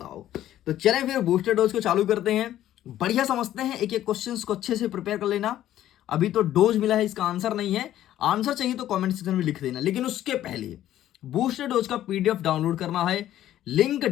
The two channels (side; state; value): right; quieter; 12.6 dB